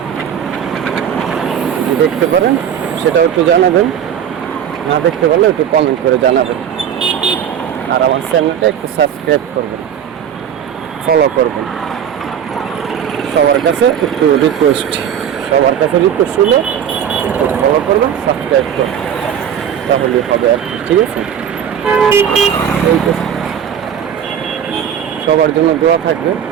দেখতে পারেন সেটাও একটু জানাবেন, না দেখতে পারলেও একটু কমেন্ট করে জানাবেন। আর আমার চ্যানেলটা একটু সাবস্ক্রাইব করবেন, ফলো করবেন। সবার কাছে একটু রিকোয়েস্ট, সবার কাছে রিকোয়েস্ট হলে ফলো করবেন, সাবস্ক্রাইব করবেন, তাহলেই হবে আর কি, ঠিক আছে? সবার জন্য দোয়া থাকবে,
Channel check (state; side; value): quieter; left; 8.9 dB